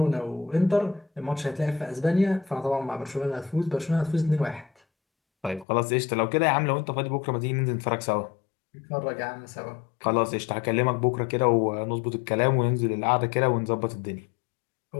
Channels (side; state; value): right; drops out; at 5.7 s